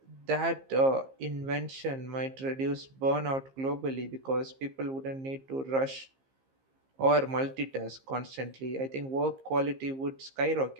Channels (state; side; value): late; left; 15 ms